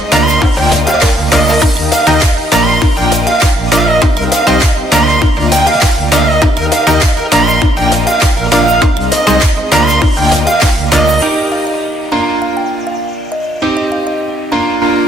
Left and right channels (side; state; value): both; normal; correlation 0.71